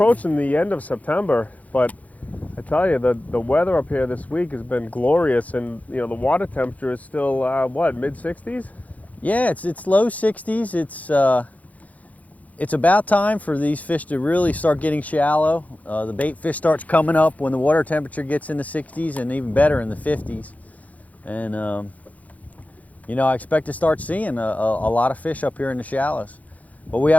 the end of September, but I tell you, the weather up here this week has been glorious, and you know the water temperature is still what, mid-60s? Yeah, it's low 60s. It's about time for these fish to really start getting shallow. The bait fish starts coming up when the water temperature gets in the 60s, and even better in the 50s. And you know, I expect to start seeing a lot of fish up here in the shallows. But we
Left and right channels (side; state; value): right; late; 0.073 ms